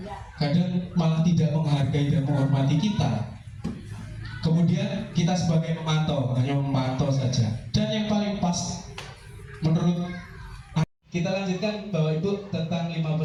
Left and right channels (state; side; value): identical; both; correlation 1.00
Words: Kadang malah tidak menghargai dan menghormati kita. Kemudian kita sebagai pemantau hanya memantau saja. Dan yang paling pas menurut kita lanjutkan Bapak Ibu tentang 5